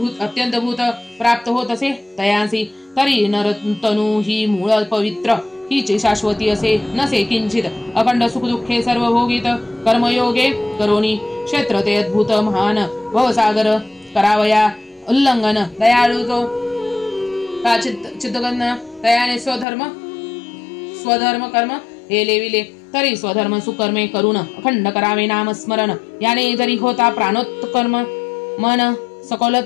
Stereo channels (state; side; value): drops out; right; at 19.7 s